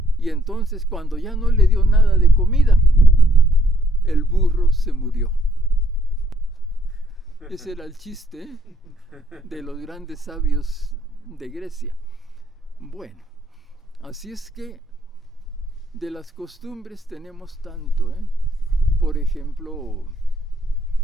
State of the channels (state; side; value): normal; both; correlation 0.69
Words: Y entonces, cuando ya no le dio nada de comida, el burro se murió. Ese era el chiste de los grandes sabios de Grecia. Bueno, así es que de las costumbres tenemos tanto, Por ejemplo,